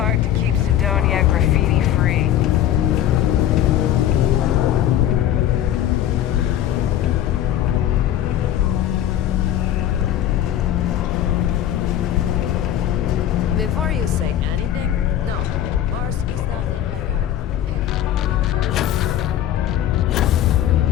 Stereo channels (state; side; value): quieter; right; 11.4 dB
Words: to keep Sidonia graffiti-free. Before you say anything, no, Mars is nothing like Earth. Heck, even Earth.